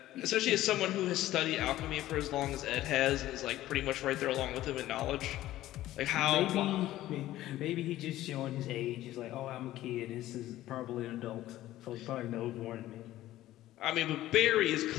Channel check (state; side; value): quieter; right; 14.8 dB